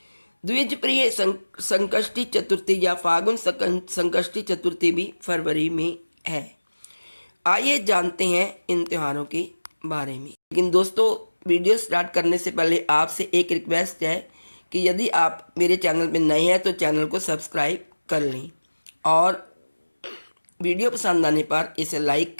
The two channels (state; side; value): inverted; both; correlation -1.00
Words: द्विज प्रिय संकष्टी चतुर्थी या फागुन संकष्टी चतुर्थी भी फरवरी में है। आइए जानते हैं इन त्योहारों के बारे में। लेकिन दोस्तों, वीडियो स्टार्ट करने से पहले आपसे एक रिक्वेस्ट है कि यदि आप मेरे चैनल पर नए हैं तो चैनल को सब्सक्राइब कर लें और वीडियो पसंद आने पर इसे लाइक